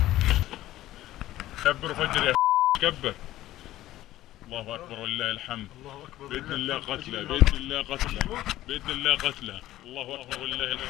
كبر فجر يا كبر. الله اكبر ولله الحمد. باذن الله قتله باذن الله قتله باذن الله قتله. الله اكبر ولله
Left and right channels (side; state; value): right; quieter; 14.9 dB